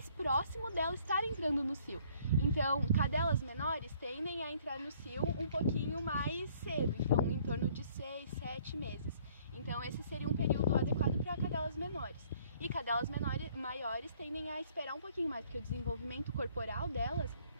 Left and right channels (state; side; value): inverted; both; correlation -0.61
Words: próximo dela estar entrando no cio. Então, cadelas menores tendem a entrar no cio um pouquinho mais cedo, então em torno de 6, 7 meses. Então, esse seria um período adequado para cadelas menores. E cadelas maiores tendem a esperar um pouquinho mais, porque o desenvolvimento corporal delas